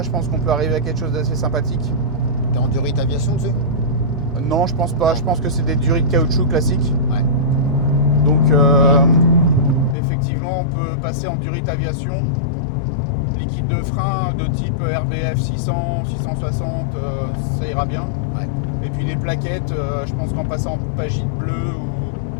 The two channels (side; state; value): right; drops out; at 10.0 s